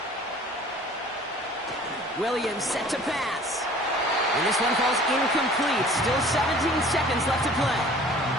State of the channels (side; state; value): both; normal; correlation 0.49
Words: Williams set to pass. And this one falls incomplete. Still 17 seconds left to play.